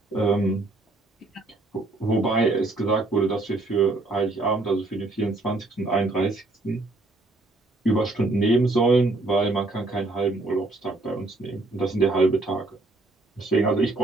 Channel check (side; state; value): left; quieter; 3.0 dB